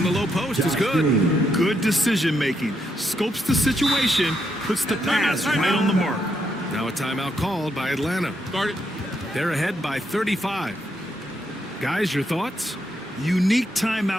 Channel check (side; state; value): both; normal; correlation 0.78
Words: the low post is good. Good decision making. Scopes the situation, puts the pass right on the mark. Now a timeout called by Atlanta. Start it. They're ahead by 35. Guys, your thoughts? Unique